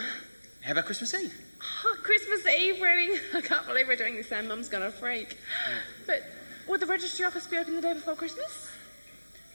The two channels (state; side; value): inverted; both; correlation -1.00